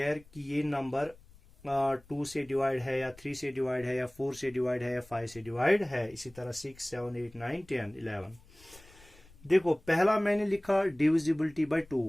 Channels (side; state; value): left; noise; rumble, 25 dB below the sound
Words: कि ये नंबर 2 से डिवाइड है या 3 से डिवाइड है या 4 से डिवाइड है या 5 से डिवाइड है। इसी तरह 6, 7, 8, 9, 10, 11। देखो पहला मैंने लिखा डिविजिबिलिटी बाय